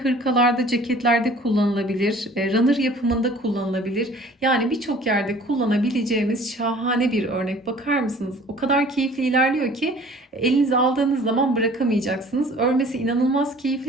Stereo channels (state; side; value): normal; both; correlation 0.50